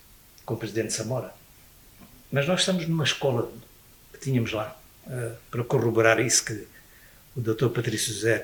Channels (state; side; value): identical; both; correlation 1.00